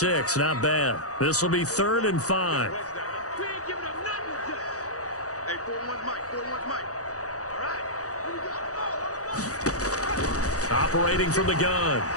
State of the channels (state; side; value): late; right; 0.66 ms